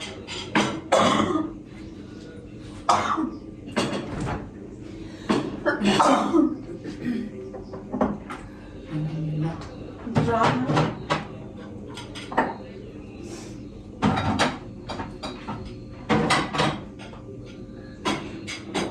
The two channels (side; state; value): both; identical; correlation 1.00